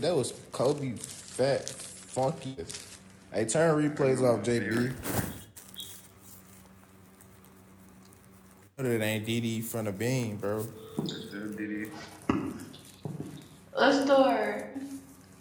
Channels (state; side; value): identical; both; correlation 1.00